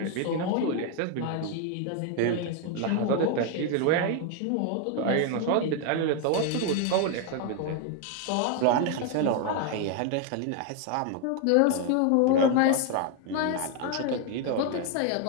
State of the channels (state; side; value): different; both; correlation 0.01